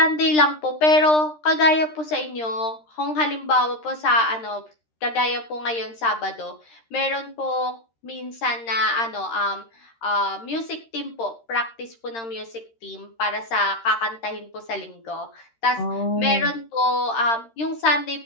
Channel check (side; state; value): right; late; 13 ms